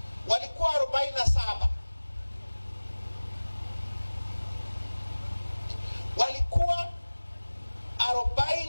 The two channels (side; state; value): both; inverted; correlation -1.00